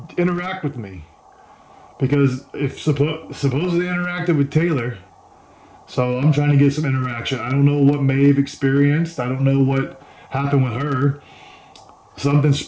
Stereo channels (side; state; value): both; identical; correlation 1.00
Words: interact with me. Because if suppose they interacted with Taylor, so I'm trying to get some interaction. I don't know what Maeve experienced. I don't know what happened with her. Something